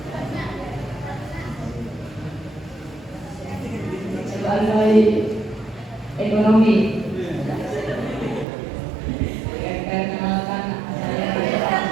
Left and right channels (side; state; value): left; drops out; at 8.5 s